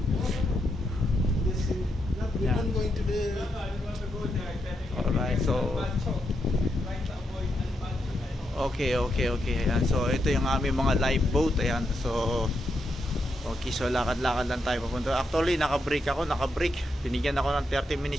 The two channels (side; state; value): both; normal; correlation 0.82